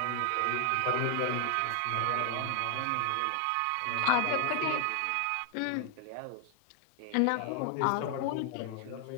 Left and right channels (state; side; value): different; both; correlation 0.00